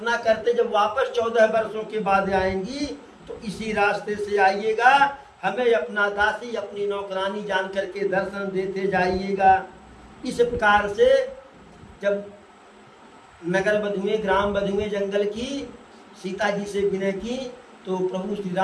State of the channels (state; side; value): identical; both; correlation 1.00